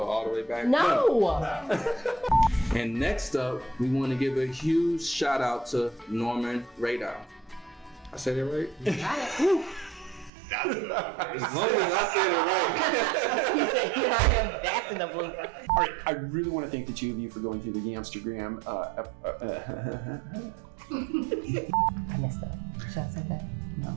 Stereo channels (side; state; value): left; drops out; at 10.3 s